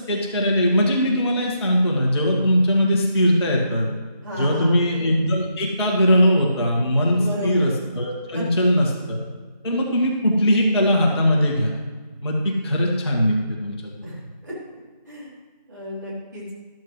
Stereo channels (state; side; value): inverted; both; correlation -0.79